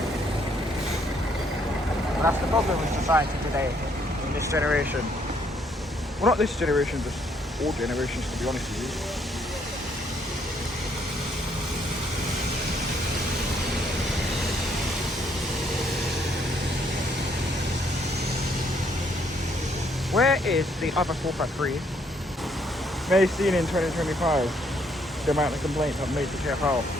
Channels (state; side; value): normal; both; correlation 0.69